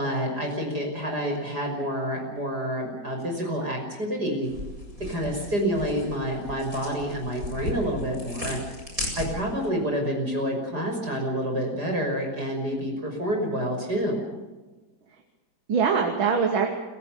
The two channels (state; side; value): late; left; 4.9 ms